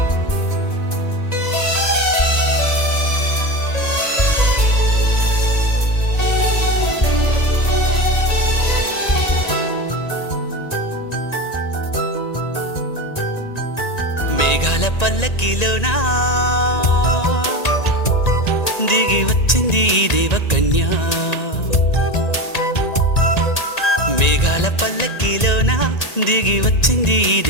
మేఘాల పల్లకిలోనా దిగి వచ్చింది ఈ దేవకన్య, మేఘాల పల్లకిలోన దిగి వచ్చింది ఈ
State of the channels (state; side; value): late; right; 1.9 ms